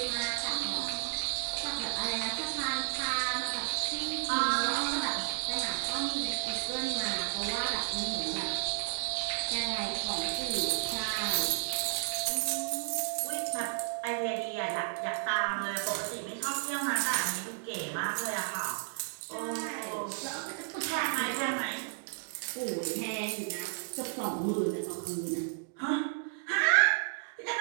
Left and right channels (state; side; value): silent; left; digital silence